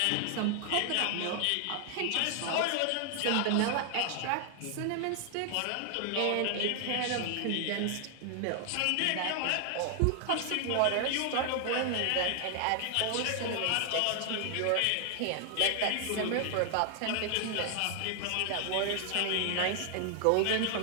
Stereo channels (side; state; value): both; different; correlation 0.00